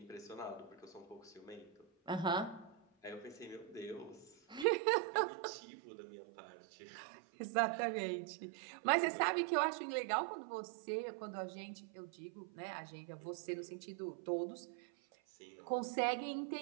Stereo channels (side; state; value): left; drops out; at 4.7 s